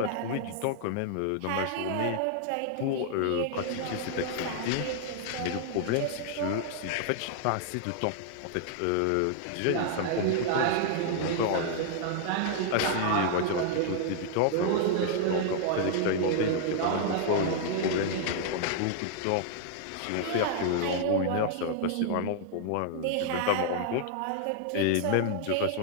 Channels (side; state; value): both; different; correlation -0.01